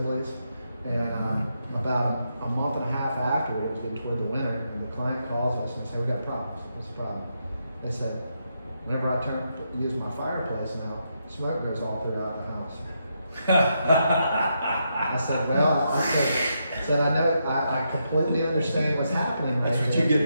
And about a month and a half after, it was getting toward the winter, and the client calls us and said, "We got problems. What's the problem?" They said, "Whenever I use my fireplace now, smoke goes all throughout the house." I said, "Well," I said, "I know, I completely understand what's happening right That's what there." you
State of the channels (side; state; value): both; inverted; correlation -0.82